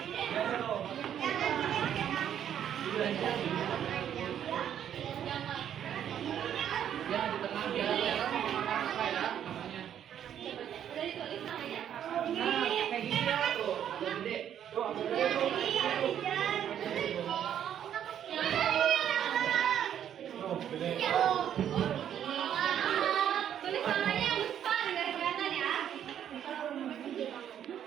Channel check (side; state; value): left; quieter; 9.8 dB